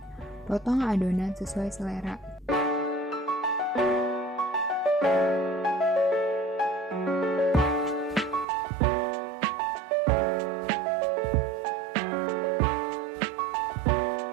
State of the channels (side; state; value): left; drops out; at 8.5 s